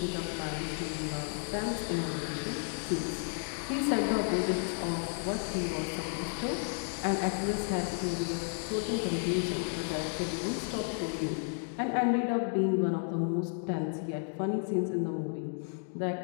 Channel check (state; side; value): silent; right; 56 dB below the other